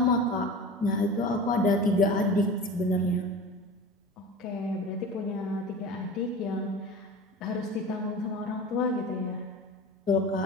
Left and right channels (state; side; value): normal; both; correlation 0.34